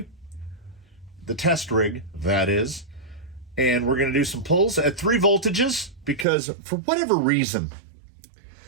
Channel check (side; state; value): left; drops out; at 6.2 s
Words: the test rig, that is, and we're going to do some pulls at 3 voltages because for whatever reason,